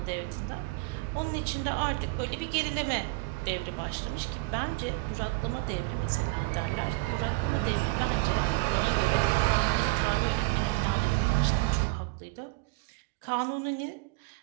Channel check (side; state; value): left; quieter; 23.5 dB